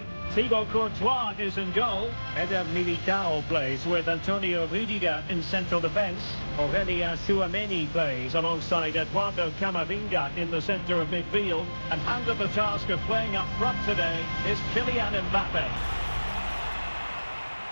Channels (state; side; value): inverted; both; correlation -1.00